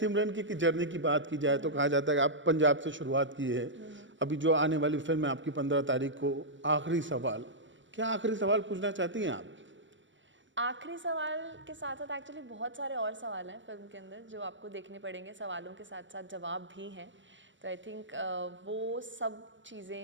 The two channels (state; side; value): late; left; 0.55 ms